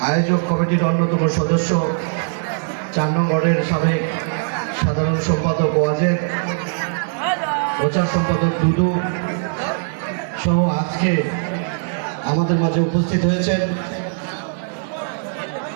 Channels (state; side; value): silent; left; 66 dB below the other